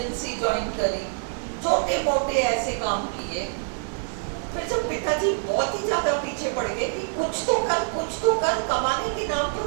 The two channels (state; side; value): silent; left; digital silence